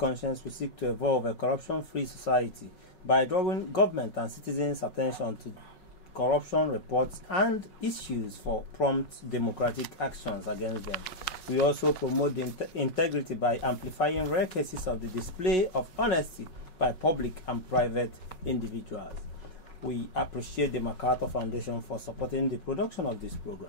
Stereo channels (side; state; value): right; late; 5.4 ms